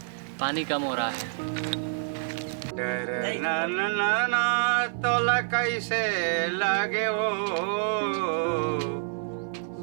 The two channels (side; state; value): left; silent; 57 dB below the other